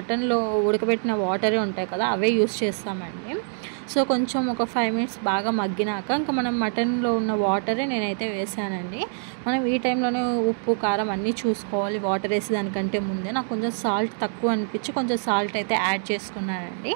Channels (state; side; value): silent; left; digital silence